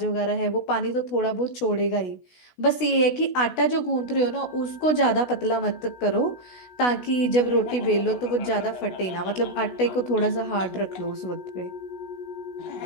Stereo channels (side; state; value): right; late; 16 ms